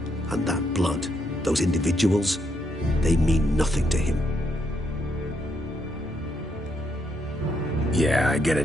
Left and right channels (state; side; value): normal; both; correlation 0.77